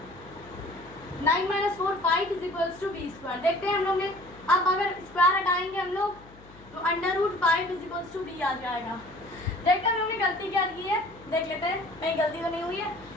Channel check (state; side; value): noise; left; hum, 23 dB below the sound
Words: 9 minus 4 5 is equals to b square. देखते हैं हम लोग ने, अब अगर स्क्वायर हटाएंगे हम लोग तो √5 इज इक्वल्स टू b आ जाएगा। देखते हैं हम लोग ने गलती क्या की है, देख लेते हैं कहीं गलती तो नहीं हुई है।